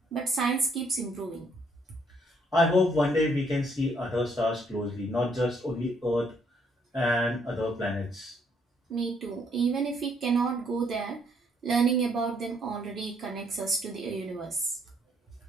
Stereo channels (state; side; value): normal; both; correlation 0.69